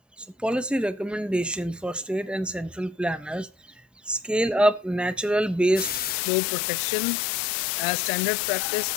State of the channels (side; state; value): right; drops out; at 6.2 s